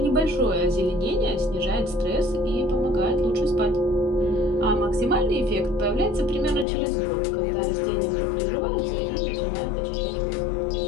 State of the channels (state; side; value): drops out; right; at 6.7 s